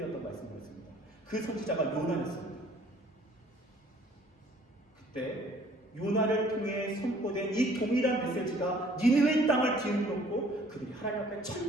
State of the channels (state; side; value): normal; both; correlation 0.56